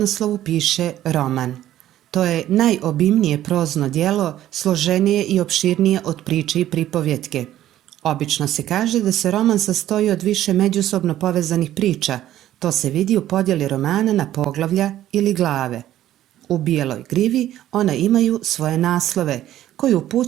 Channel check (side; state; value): left; quieter; 12.9 dB